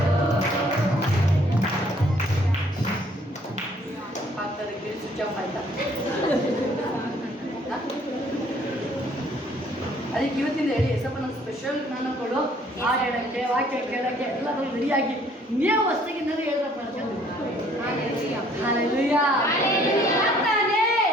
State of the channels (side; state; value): both; normal; correlation 0.60